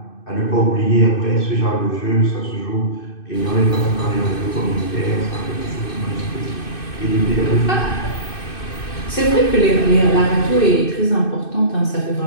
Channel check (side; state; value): right; late; 2.6 ms